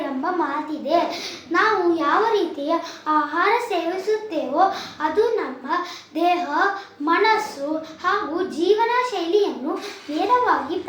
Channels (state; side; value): identical; both; correlation 1.00